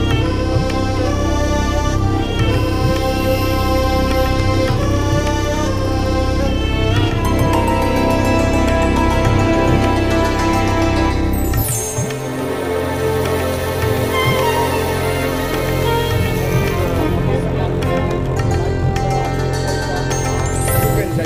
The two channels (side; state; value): both; identical; correlation 1.00